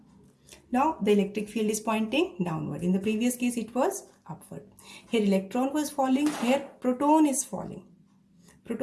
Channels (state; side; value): identical; both; correlation 1.00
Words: Now the electric field is pointing downward. In the previous case it was upward. Here electron was falling, here proton is falling.